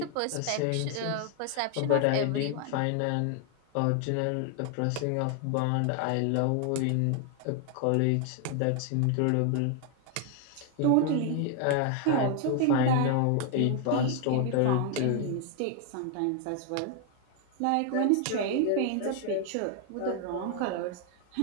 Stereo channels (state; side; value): different; both; correlation 0.00